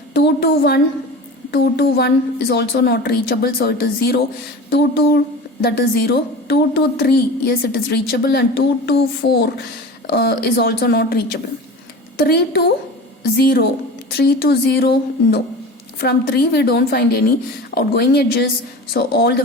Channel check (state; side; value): normal; both; correlation 0.34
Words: 2 to 1 is also not reachable, so it is 0. 2 to that is 0. 2 to 3, yes, it is reachable, and 2 to 4 is also not reachable. 3 to 0 no. From 3 we don't find any outgoing edges, so all the